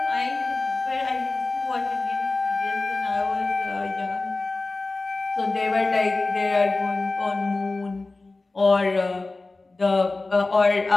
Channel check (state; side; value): quieter; right; 3.4 dB